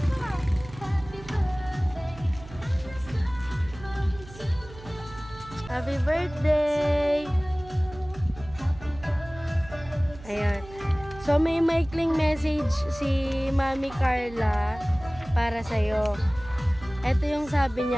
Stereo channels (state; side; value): noise; right; hum, 17 dB below the sound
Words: Happy birthday! Ayan. So, may maikling message si Mami Carla para sa'yo. Ito yung sabi